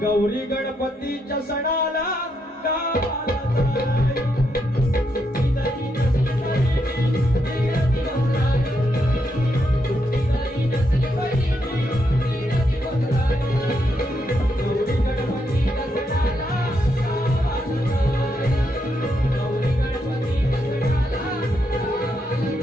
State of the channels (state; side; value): normal; both; correlation 0.79